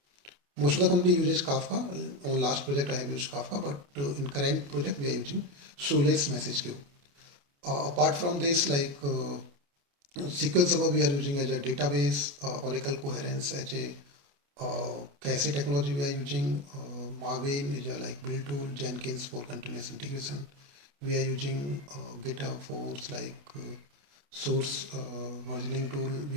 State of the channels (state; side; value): late; left; 28 ms